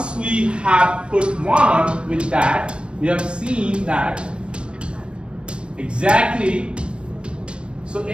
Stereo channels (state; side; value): late; left; 0.057 ms